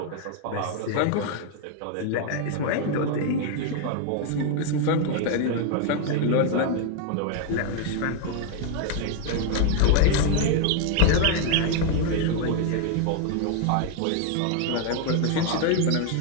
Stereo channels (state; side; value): different; both; correlation 0.01